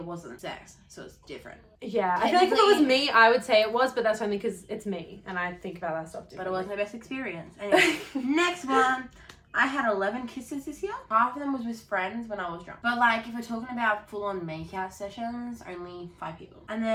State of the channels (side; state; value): both; identical; correlation 1.00